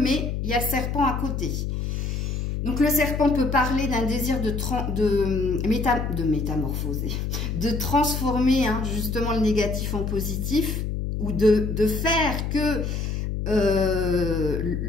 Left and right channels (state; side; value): noise; left; hum, 2 dB below the sound